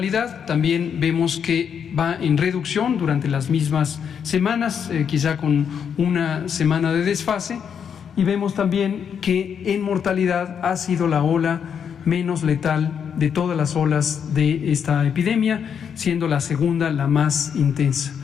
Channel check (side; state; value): right; quieter; 7.5 dB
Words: también vemos que va en reducción durante las mismas semanas, quizá con una semana de desfase, y vemos también que en mortalidad ha sido la ola menos letal de todas las olas de esta epidemia, siendo la segunda la más intensa.